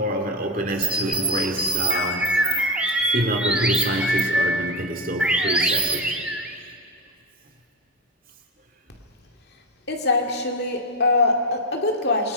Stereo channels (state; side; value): normal; both; correlation 0.15